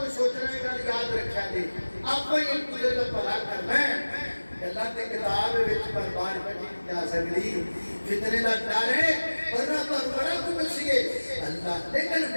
سوچنا ہے، یاد رکھا دے آپ ایک دوسرے کا بھلا کرنا ہے، اللہ کے کتاب وچ برباد کری جا سکتی، فتنے دا ڈر ہے ورنہ پر بڑا کچھ سیے اللہ، لیکن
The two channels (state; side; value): inverted; both; correlation -1.00